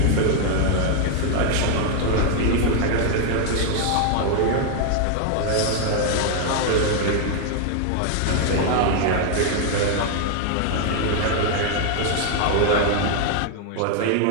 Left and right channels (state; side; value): different; both; correlation 0.00